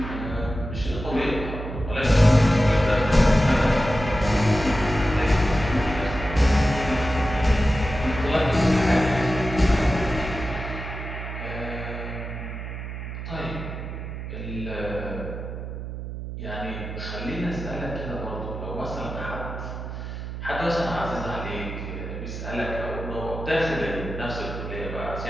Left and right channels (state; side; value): noise; right; hum, 7 dB below the sound